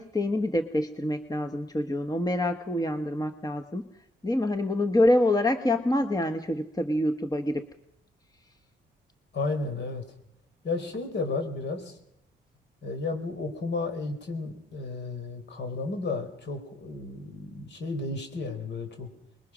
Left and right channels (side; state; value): both; normal; correlation 0.75